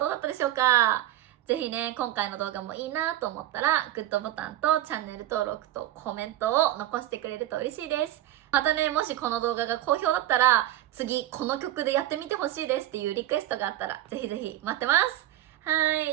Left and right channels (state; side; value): quieter; left; 13.6 dB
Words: うだったでしょうか？ぜひね、今回の動画もいいなと思ったら、グッドボタンとチャンネル登録とコメントを残してくれると嬉しいです。またね、もしこの動画が好評だったら、次この曲でやってみてほしいですっていうリクエストがあったら、ぜひぜひ待ってます。は